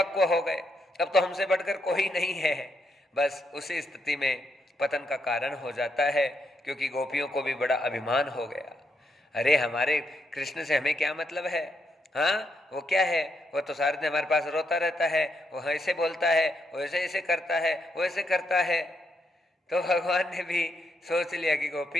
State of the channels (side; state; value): both; normal; correlation 0.79